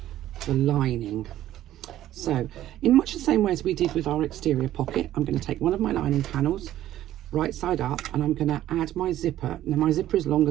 the lining. So in much the same way as we did with our exterior pocket, I'm going to take one of my lining panels, right side up, and I'm going to add my zipper. Now my zipper is longer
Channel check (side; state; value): left; quieter; 13.1 dB